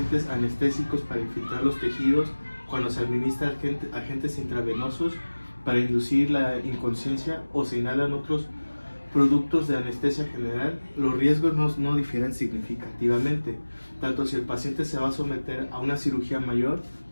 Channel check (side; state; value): both; inverted; correlation -1.00